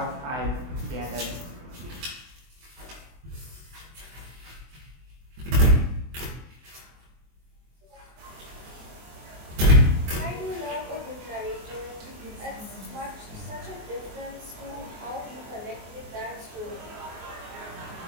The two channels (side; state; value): left; late; 24 ms